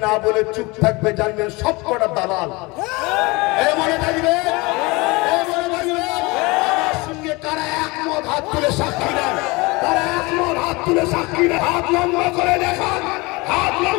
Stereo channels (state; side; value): quieter; right; 24.6 dB